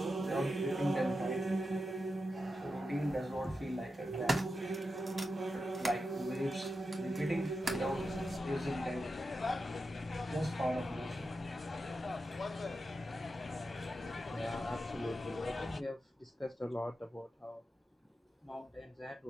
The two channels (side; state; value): both; normal; correlation 0.89